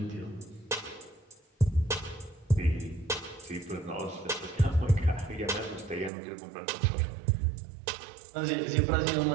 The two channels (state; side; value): drops out; left; at 6.1 s